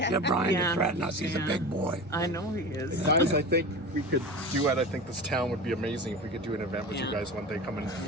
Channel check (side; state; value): both; normal; correlation 0.31